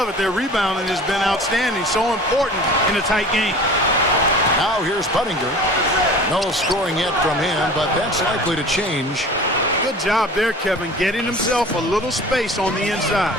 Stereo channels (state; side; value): normal; both; correlation 0.41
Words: it. Their rebounding has been outstanding. So important in a tight game. Now here's Buttinger. No scoring yet from him, but that's likely to change. Good job there, Kevin, getting himself a little space on the inside.